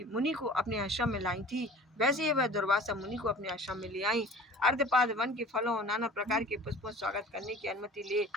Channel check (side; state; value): both; normal; correlation 0.43